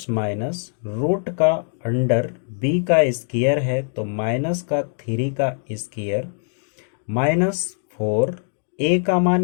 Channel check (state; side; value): silent; right; digital silence